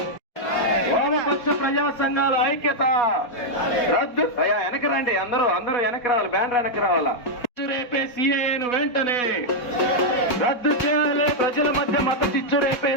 వామపక్ష ప్రజా సంఘాల ఐక్యత రద్దు. అయ్యా వెనక రండి, అందరూ వెనక రావాలి, బ్యానర్ వెనక రావాలా. రేపే సిఏఏను వెంటనే రద్దు చేయాలి. ప్రజల మధ్య మత చిచ్చు రేపే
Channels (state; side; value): late; right; 4.1 ms